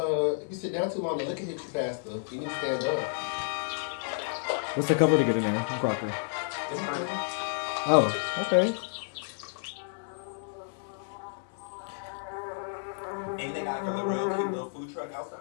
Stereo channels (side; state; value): right; silent; digital silence